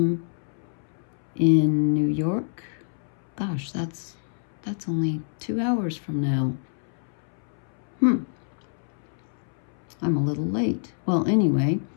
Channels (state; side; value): silent; right; 60 dB below the other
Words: in New York. Gosh, that's only 2 hours from now. I'm a little late. Well, anyway,